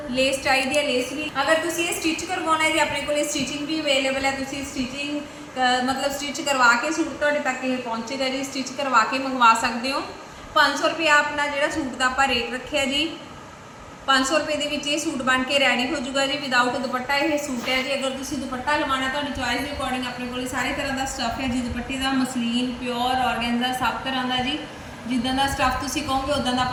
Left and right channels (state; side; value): identical; both; correlation 1.00